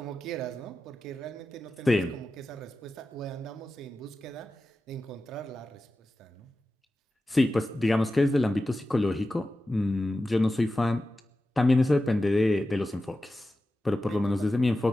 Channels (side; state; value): both; normal; correlation 0.93